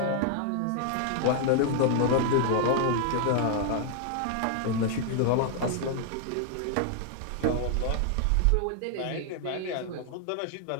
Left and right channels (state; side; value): different; both; correlation 0.00